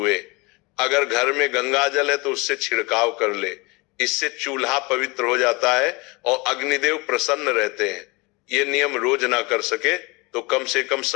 अगर घर में गंगा जल है तो उससे छिड़काव कर ले। इससे चूल्हा पवित्र हो जाता है और अग्निदेव प्रसन्न रहते हैं। ये नियम रोज ना कर सके तो कम से कम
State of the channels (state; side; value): quieter; right; 25.9 dB